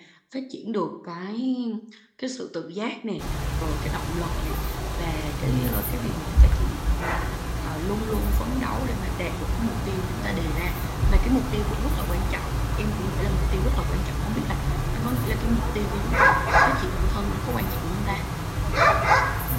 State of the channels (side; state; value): both; identical; correlation 1.00